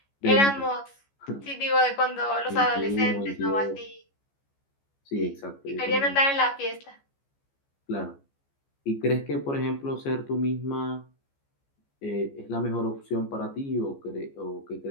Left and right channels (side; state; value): right; late; 14 ms